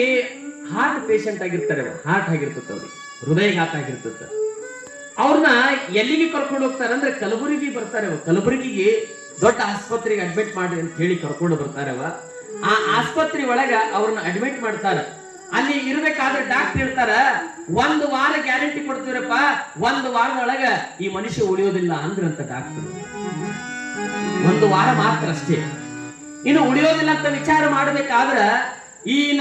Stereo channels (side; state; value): both; identical; correlation 1.00